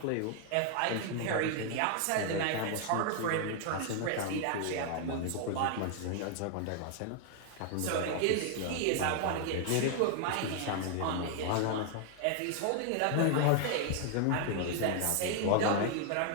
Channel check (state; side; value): different; both; correlation 0.00